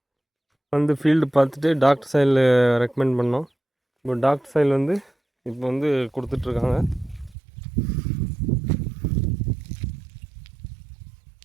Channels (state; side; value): drops out; left; at 7.4 s